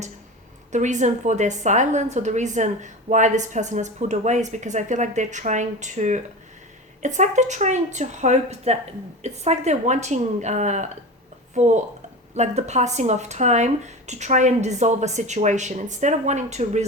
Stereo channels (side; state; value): both; normal; correlation 0.29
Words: the reason for their silence or the reason why this person has pulled away is because I feel like they're trying to, it's like they're trying to hope that, it's like they're wanting for like the passing of time to try and dissolve a situation instead of wanting to